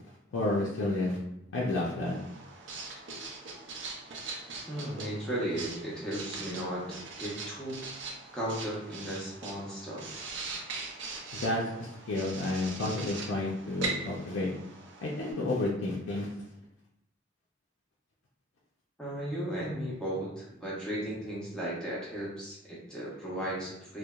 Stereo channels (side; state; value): both; normal; correlation 0.41